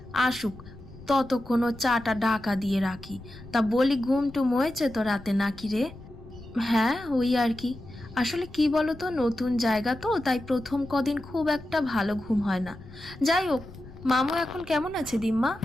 আসুক ততক্ষণ চাটা ঢাকা দিয়ে রাখি। তা বলি, ঘুম টুম হয়েছে তো রাতে নাকি রে? হ্যাঁ ওই আর কি, আসলে কি বলতো, নতুন জায়গা তো, তাই প্রথম কদিন খুব একটা ভালো ঘুম হয় না। যাই হোক, মামু এখন কেমন আছে দিম্মা?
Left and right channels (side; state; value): left; noise; rumble, 18 dB below the sound